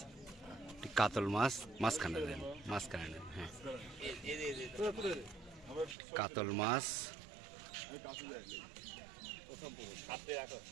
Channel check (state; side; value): drops out; left; at 6.0 s